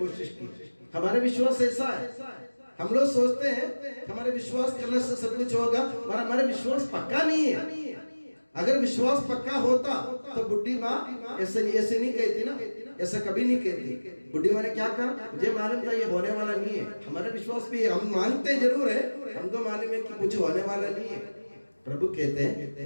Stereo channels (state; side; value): inverted; both; correlation -1.00